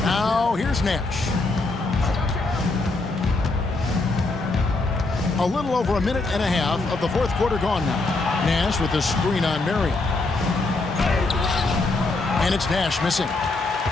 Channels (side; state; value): right; quieter; 3.3 dB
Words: Now here's Nash. A little over a minute and a half of the fourth quarter gone now. Nash with the screen on Marion. And it's Nash missing.